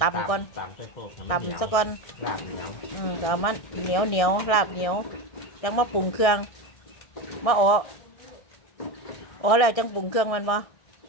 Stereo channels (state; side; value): late; right; 1.6 ms